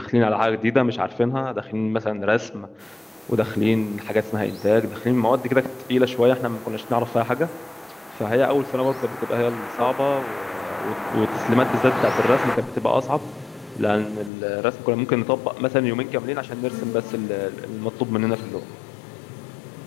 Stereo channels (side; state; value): right; drops out; at 14.3 s